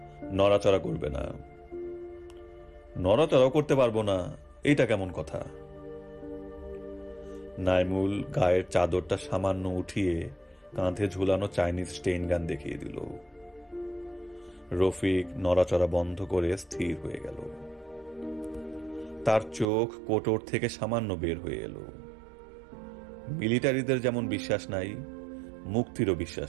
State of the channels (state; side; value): drops out; left; at 19.7 s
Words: নড়াচড়া করবে না। নড়াচড়াও করতে পারবো না, এইটা কেমন কথা? নাইমুল গায়ের চাদরটা সামান্য উঠিয়ে কাঁধে ঝুলানো চাইনিজ স্টেইন গান দেখিয়ে দিল। রফিক নড়াচড়া বন্ধ করে স্থির হয়ে গেল। তার চোখ কোটর থেকে সামান্য বের হয়ে এলো। মিলিটারিদের যেমন বিশ্বাস নাই, মুক্তিরও